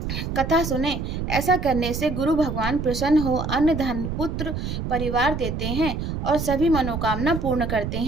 कथा सुने। ऐसा करने से गुरु भगवान प्रसन्न हो अन्न धन पुत्र परिवार देते हैं और सभी मनोकामना पूर्ण करते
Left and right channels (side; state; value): right; noise; rumble, 4 dB below the sound